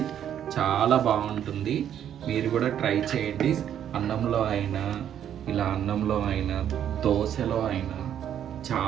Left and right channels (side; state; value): left; quieter; 9.8 dB